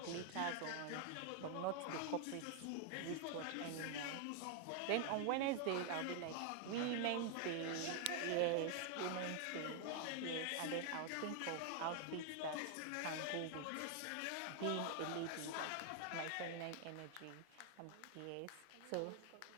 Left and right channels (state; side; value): different; both; correlation 0.00